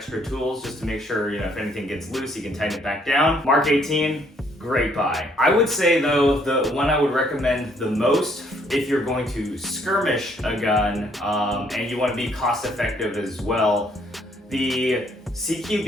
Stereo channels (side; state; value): both; normal; correlation 0.66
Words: tools just to make sure, if anything gets loose, you can tighten it back down. Mark 18, great buy. I would say though, the one I would recommend the most if you're going to skirmish a gun and you want to be cost effective as well, the